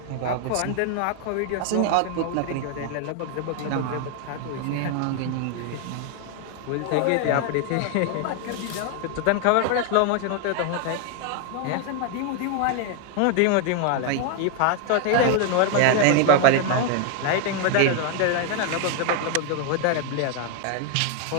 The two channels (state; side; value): different; both; correlation 0.01